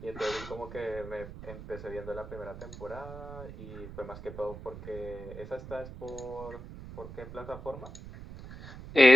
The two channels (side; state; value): right; noise; rumble, 13 dB below the sound